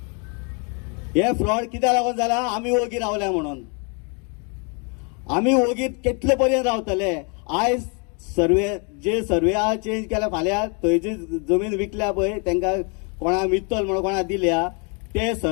हे फ्रॉड कित्याक लागून जाला? आमी ओगी रावल्या म्हणून. आमी ओगीत कितले पर्यंत रावतले? आयज सर्वे चेंज केल्या, फाल्यां थंय जी जमीन विकल्या पळय तांकां कोणा मित्तल म्हणून कोणा दिल्या ते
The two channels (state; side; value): quieter; right; 35.6 dB